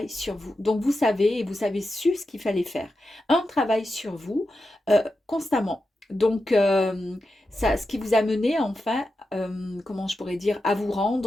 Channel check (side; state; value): both; normal; correlation 0.89